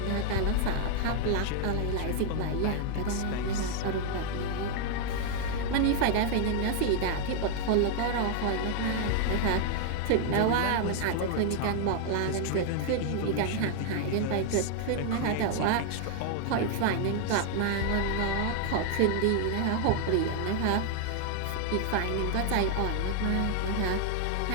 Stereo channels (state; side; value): different; both; correlation 0.00